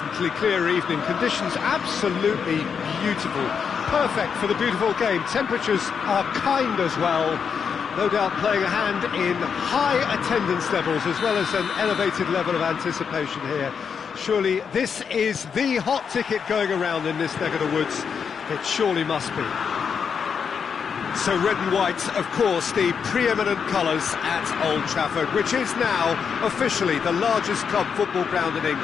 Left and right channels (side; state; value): right; quieter; 6.6 dB